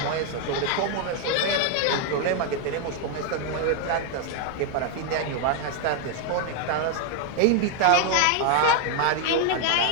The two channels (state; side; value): different; both; correlation 0.01